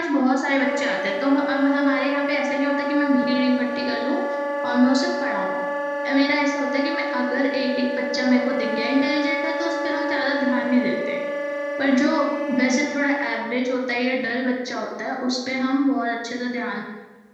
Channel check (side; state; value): both; identical; correlation 1.00